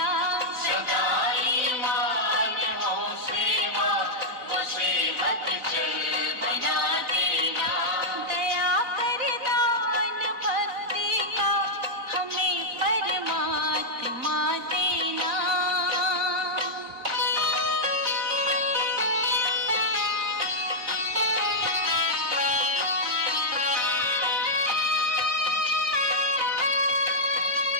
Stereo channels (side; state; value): left; late; 4.0 ms